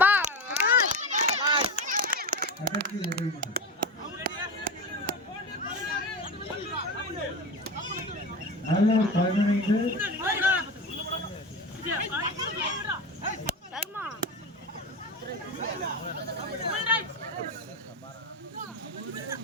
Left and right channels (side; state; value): both; normal; correlation 0.23